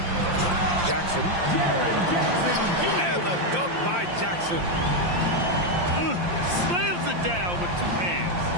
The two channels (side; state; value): left; late; 5.7 ms